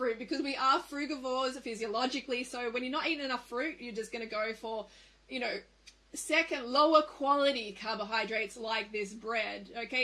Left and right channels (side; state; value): both; identical; correlation 1.00